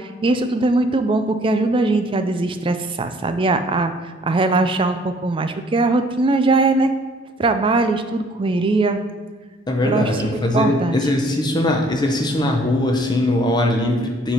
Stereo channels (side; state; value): both; normal; correlation 0.59